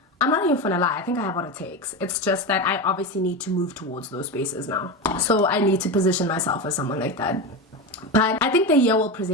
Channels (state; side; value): normal; both; correlation 0.19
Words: I'm not even gonna lie, I think I have what it takes. It's just that I obviously need to move towards those spaces now, so I need to position myself as someone like that. But I think the year will